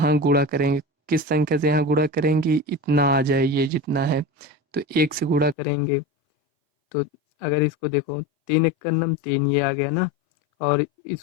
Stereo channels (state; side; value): drops out; right; at 5.6 s